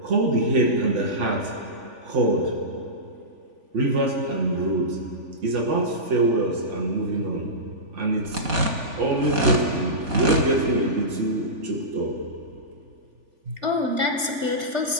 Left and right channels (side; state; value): left; late; 3.4 ms